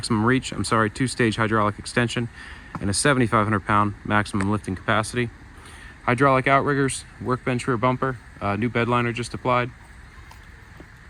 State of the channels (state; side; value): identical; both; correlation 1.00